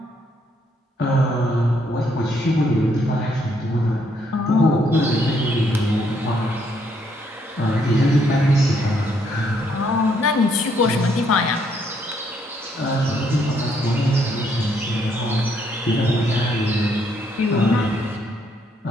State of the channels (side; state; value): both; normal; correlation 0.71